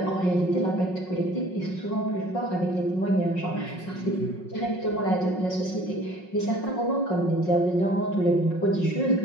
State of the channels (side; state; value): right; late; 5.5 ms